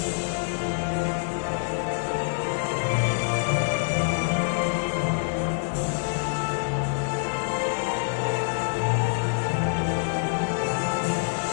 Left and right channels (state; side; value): silent; right; digital silence